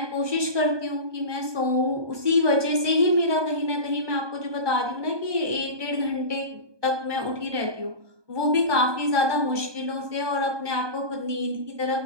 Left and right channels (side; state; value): left; late; 1.2 ms